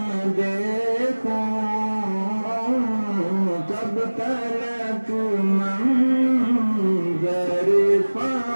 دیکھوں، کب تلک منظر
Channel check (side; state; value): both; inverted; correlation -1.00